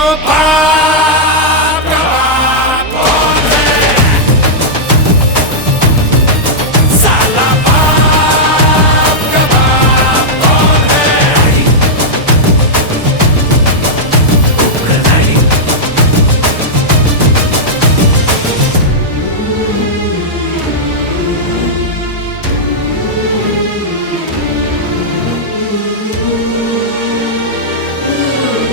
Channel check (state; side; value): normal; both; correlation -0.07